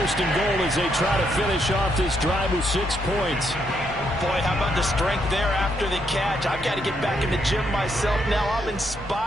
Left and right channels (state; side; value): normal; both; correlation 0.76